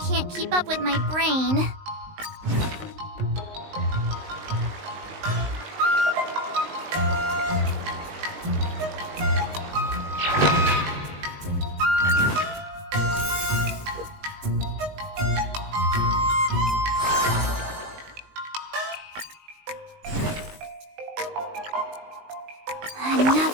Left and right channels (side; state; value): left; late; 19 ms